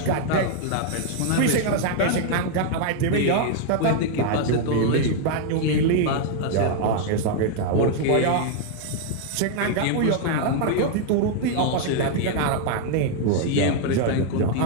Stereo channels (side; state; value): both; different; correlation 0.00